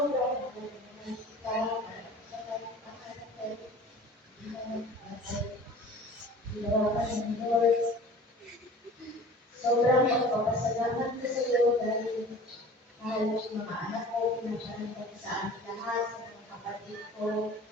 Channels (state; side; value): normal; both; correlation 0.43